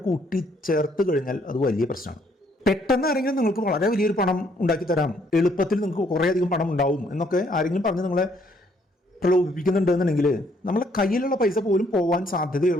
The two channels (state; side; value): normal; both; correlation 0.67